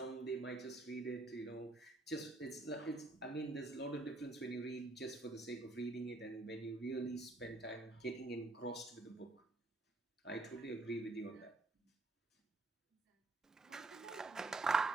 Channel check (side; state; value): left; quieter; 3.0 dB